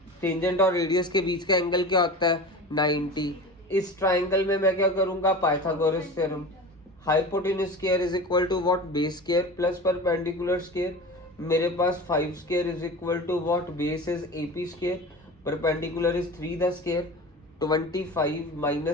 टेंजेंट और रेडियस के बीच का एंगल क्या होता है 90। इस ट्राइंगल में मैं क्या करूंगा Pythagoras theorem, hypotenuse square is equal to what base square plus perpendicular square. मेरे पास 5 square is equal to what base is AP square, perpendicular is 3 the square. 25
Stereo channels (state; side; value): normal; both; correlation 0.32